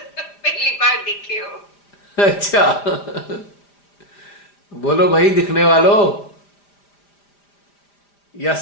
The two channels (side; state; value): right; late; 5.0 ms